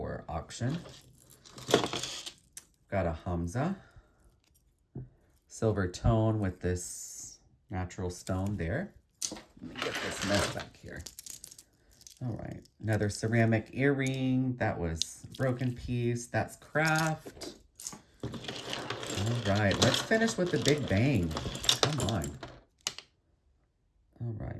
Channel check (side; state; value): both; identical; correlation 1.00